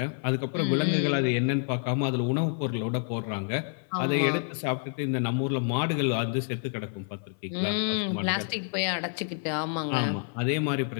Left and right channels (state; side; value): silent; right; 59 dB below the other